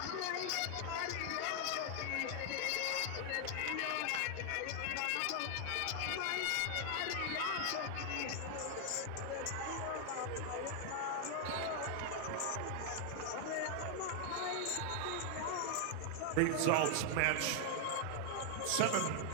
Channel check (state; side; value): different; both; correlation 0.00